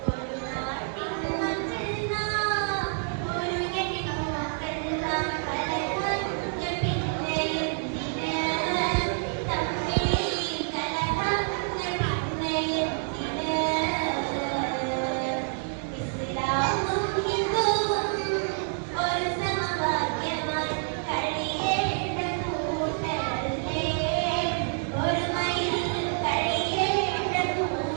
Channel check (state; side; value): silent; left; 56 dB below the other